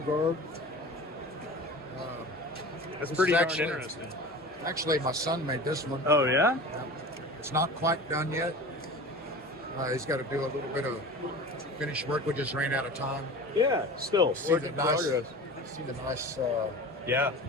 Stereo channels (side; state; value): both; normal; correlation 0.35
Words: guard. that's This pretty is darn actually- interesting. Actually, my son made this one. Oh yeah. It's not quite done yet. He's got to do a little bit of finish work. We just ran out of time. Yeah. Still See work the in nice, progress. see the nice Yeah.